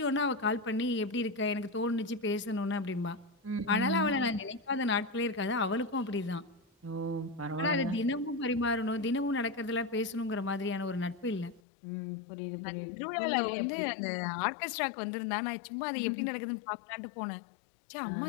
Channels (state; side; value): drops out; right; at 11.6 s